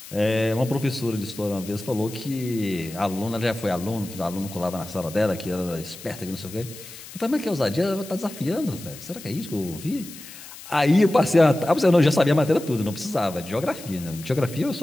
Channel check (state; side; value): noise; left; hiss, 15 dB below the sound